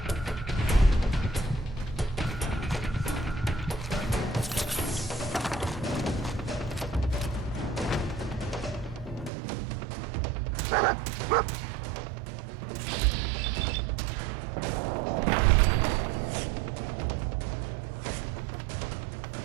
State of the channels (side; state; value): left; drops out; at 9.3 s